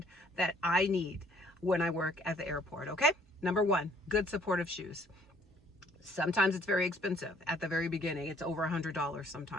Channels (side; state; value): both; normal; correlation 0.61